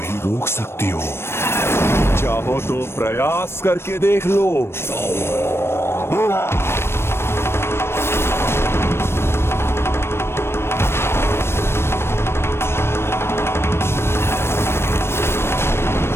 रोक सकती हो। चाहो तो प्रयास करके देख लो।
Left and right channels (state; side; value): late; right; 0.12 ms